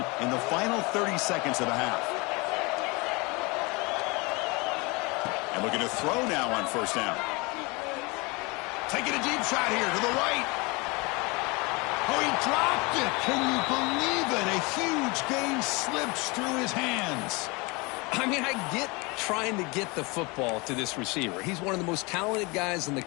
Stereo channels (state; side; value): quieter; right; 26.9 dB